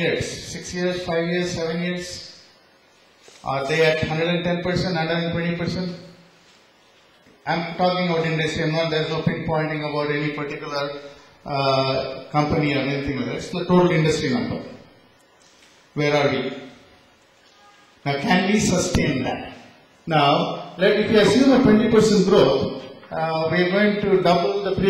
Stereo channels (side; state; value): both; identical; correlation 1.00